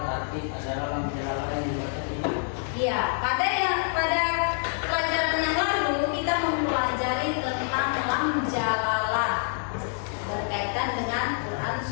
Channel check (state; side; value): silent; right; 60 dB below the other